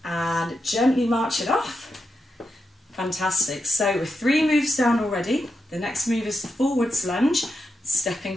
and gently march it off. Fantastic. So with 3 moves down already, the next move is the forwards lunge, stepping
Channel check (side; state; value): both; normal; correlation 0.86